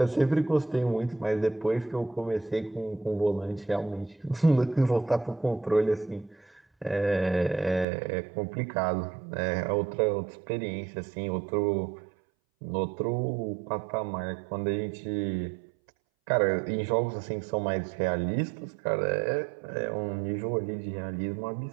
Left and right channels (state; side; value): drops out; left; at 7.9 s